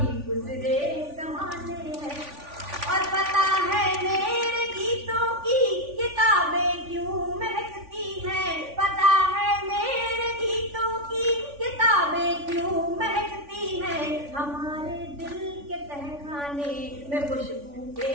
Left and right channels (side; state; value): left; late; 3.5 ms